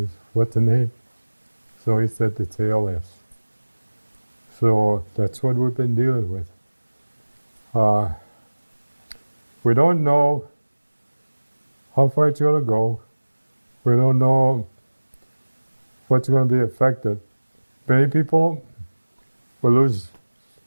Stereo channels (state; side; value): inverted; both; correlation -1.00